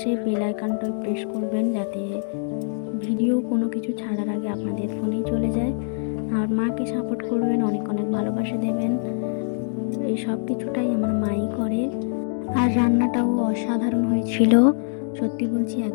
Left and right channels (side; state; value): right; silent; digital silence